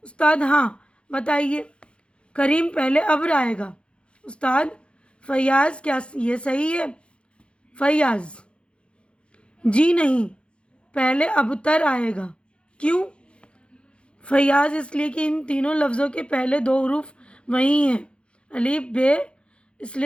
استاد: ہاں بتائیے. کریم: پہلے ابر آئے گا. استاد: فیاض: کیا یہ صحیح ہے؟ فیاض: جی نہیں, پہلے ابتر آئے گا. کیوں؟ فیاض: اس لیے کہ ان تینوں لفظوں کے پہلے دو حروف وہی ہیں, الف بے, اس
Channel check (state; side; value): late; right; 0.057 ms